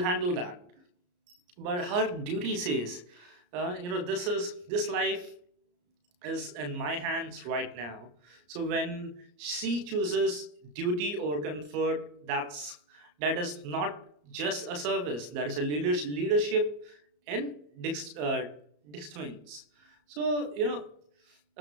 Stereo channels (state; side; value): late; left; 34 ms